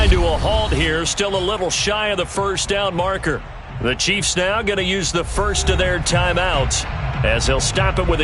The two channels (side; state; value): both; identical; correlation 1.00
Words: to a halt here, still a little shy of the first down marker. The Chiefs now going to use the first of their timeouts as they'll stop it with